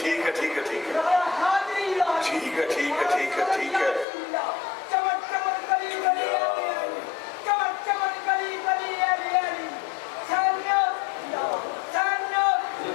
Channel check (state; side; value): drops out; right; at 4.0 s